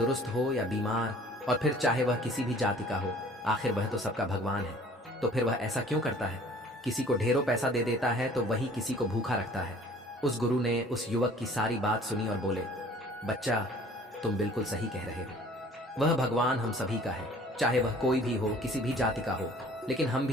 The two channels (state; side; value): normal; both; correlation 0.51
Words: हो या बीमार, और फिर चाहे वह किसी भी जाति का हो। आखिर वह तो सबका भगवान है। तो फिर वह ऐसा क्यों करता है? किसी को ढेरों पैसा दे देता है तो वही किसी को भूखा रखता है। उस गुरु ने उस युवक की सारी बात सुनी और बोले, बच्चा, तुम बिल्कुल सही कह रहे हो। वह भगवान हम सभी का है, चाहे वह कोई भी हो, किसी भी जाति का हो। लेकिन हम